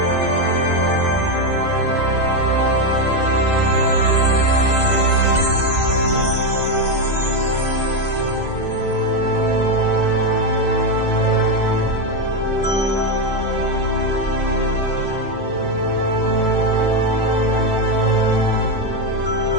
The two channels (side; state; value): right; late; 2.0 ms